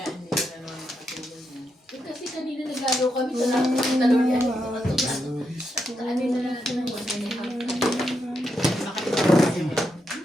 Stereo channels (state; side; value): normal; both; correlation 0.83